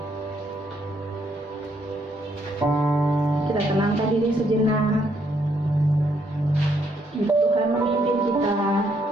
Kita tenangkan diri sejenak. Tuhan memimpin kita.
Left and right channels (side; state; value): both; normal; correlation 0.72